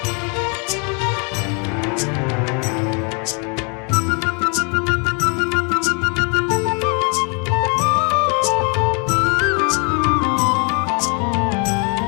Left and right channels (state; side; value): quieter; right; 35.4 dB